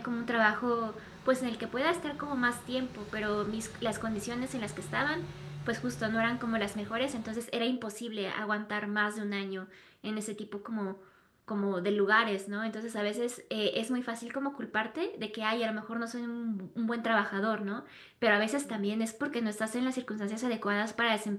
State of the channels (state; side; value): identical; both; correlation 1.00